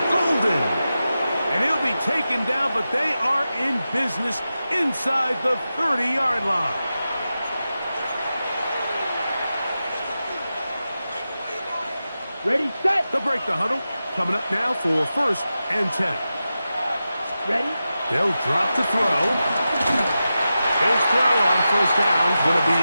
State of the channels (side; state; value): both; inverted; correlation -0.92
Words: Golden. And he'll be taken down, but they are in business inside the 30-yard line. Ready, set. They'll break the huddle. Coming up now for 1st and 10. Ready. They'll drop to throw. His throw on 1st down is going to be